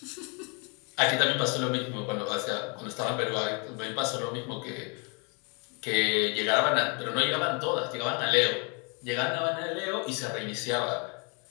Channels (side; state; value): right; quieter; 34.3 dB